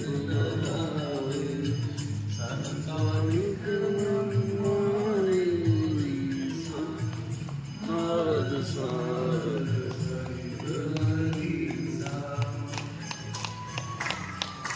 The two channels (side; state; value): both; identical; correlation 1.00